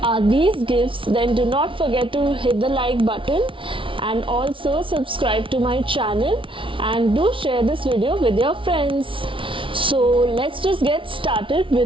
are these gifts, then do not forget to hit the like button and also subscribe to my channel, and do share this video with your friends. So let's just get started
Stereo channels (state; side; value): late; left; 0.25 ms